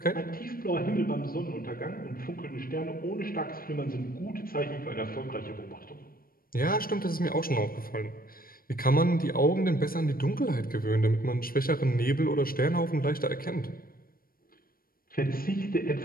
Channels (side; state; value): right; late; 0.42 ms